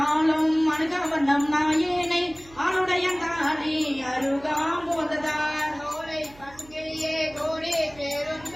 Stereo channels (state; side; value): noise; right; hum, 23 dB below the sound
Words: அணுகவண்ணம் நாயேனை ஆளுடைய தாலி அருகாம்போததார் கோலை பசுங்கிளியே கோடி